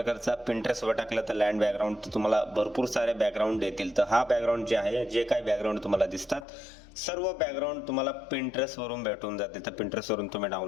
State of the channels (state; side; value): drops out; right; at 6.5 s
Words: पिंटरेस्टवर टाकलं तर लँड बॅकग्राऊंड तर तुम्हाला भरपूर सारे बॅकग्राऊंड येतील. तर हा बॅकग्राऊंड जे आहे, जे काही बॅकग्राऊंड तुम्हाला दिसतात सर्व बॅकग्राऊंड तुम्हाला पिंटरेस्ट वरून भेटून जाते. तर पिंटरेस्ट वरून तुम्ही